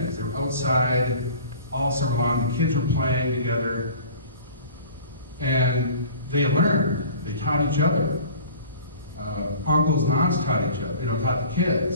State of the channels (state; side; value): inverted; both; correlation -0.45